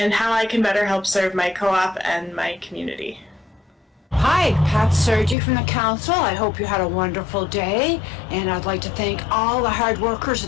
how I can better help serve my co-op and my community. Hi, Pat Sergi from the council. I hope you had a wonderful day, and I'd like to thank all the hard workers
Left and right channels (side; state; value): right; drops out; at 5.4 s